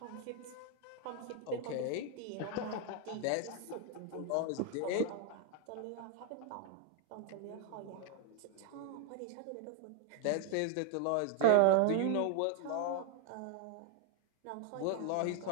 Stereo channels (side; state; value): both; different; correlation 0.00